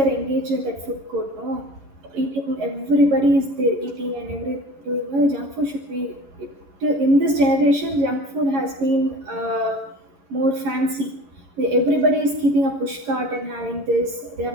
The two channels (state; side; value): late; left; 11 ms